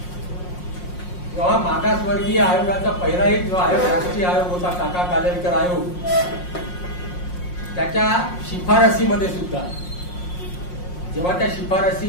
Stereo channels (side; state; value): right; late; 5.6 ms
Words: तेव्हा मागासवर्गीय आयोगाचा पहिला एक जो आयोग राष्ट्रीय आयोग होता, काका कालेलकर आयोग, त्याच्या शिफारसीमध्ये सुद्धा जेव्हा त्या शिफारसी